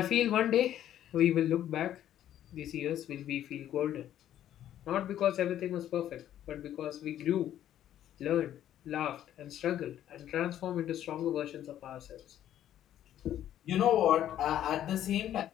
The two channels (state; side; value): quieter; right; 11.5 dB